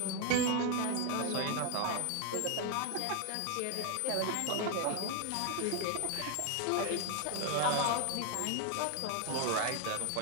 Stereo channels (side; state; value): both; different; correlation 0.01